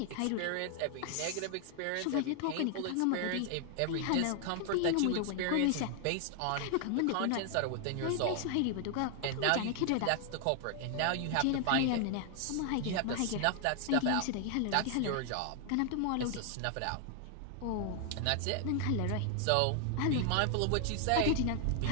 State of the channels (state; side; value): different; both; correlation 0.00